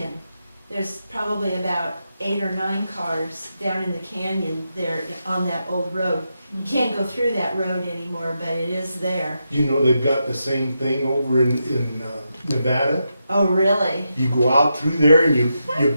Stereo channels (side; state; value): both; inverted; correlation -0.86